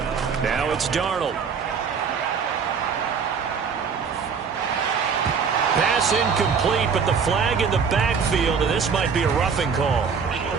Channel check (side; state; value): left; quieter; 6.1 dB